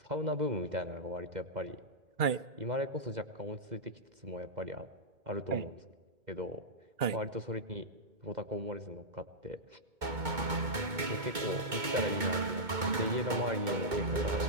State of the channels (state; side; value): late; left; 2.2 ms